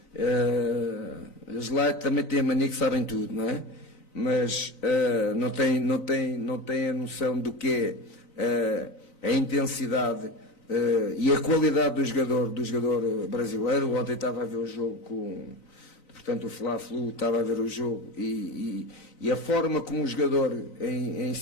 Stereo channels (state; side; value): late; right; 3.9 ms